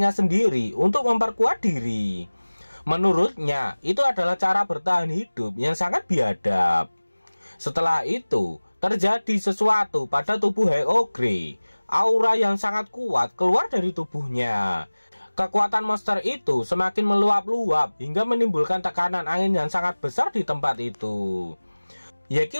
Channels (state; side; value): inverted; both; correlation -1.00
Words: sendiri untuk memperkuat diri. Menurutnya, itu adalah cara bertahan hidup yang sangat biadab. Setelah itu, terjadi sesuatu pada tubuh Hag Ogre. Aura yang sangat kuat keluar dari tubuhnya. Kekuatan monster itu semakin meluap-luap hingga menimbulkan tekanan angin yang sangat besar di tempat itu.